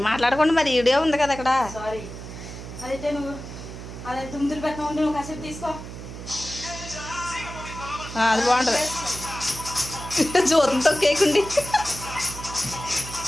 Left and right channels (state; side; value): noise; right; hum, 11 dB below the sound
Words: మాట్లాడకుండా మరి వీడియో ఉంది కదా అక్కడ. అదైతే నువ్వు అదే తుమ్ములు పెట్టిన ఉంటే నువ్వు కాసేపు తీసుకో. అది బాగుంటుంది జ్యోతంతో కేకుండి